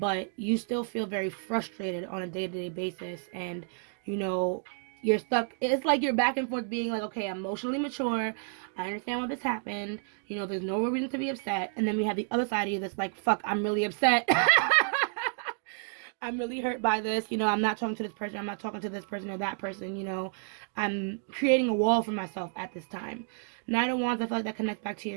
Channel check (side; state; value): left; silent; 58 dB below the other